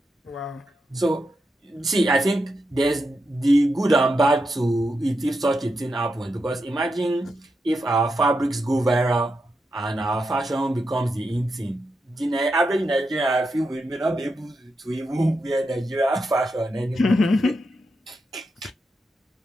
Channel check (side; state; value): both; normal; correlation 0.85